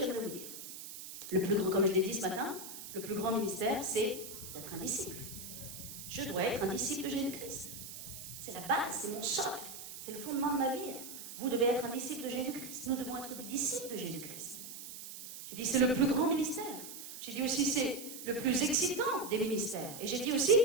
vous dire, le plus grand, comme je l'ai dit ce matin, le plus grand ministère, c'est d'être un disciple. Je dois être un disciple de Jésus-Christ. C'est la base, c'est mon socle, c'est le fondement de ma vie. Vous devez être un disciple de Jésus-Christ. Nous devons être des disciples de Jésus-Christ. J'ai dit, c'est le plus grand ministère. J'ai dit aussi, c'est le plus excitant des ministères. Et j'ai dit aussi,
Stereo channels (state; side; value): noise; right; hiss, 11 dB below the sound